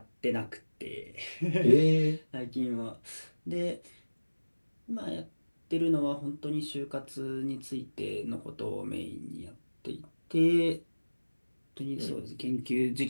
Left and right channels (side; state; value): both; inverted; correlation -1.00